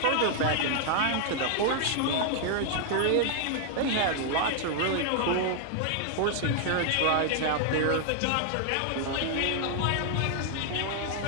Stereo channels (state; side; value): different; both; correlation 0.00